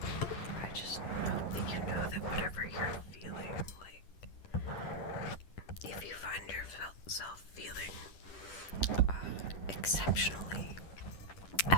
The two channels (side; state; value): right; late; 10 ms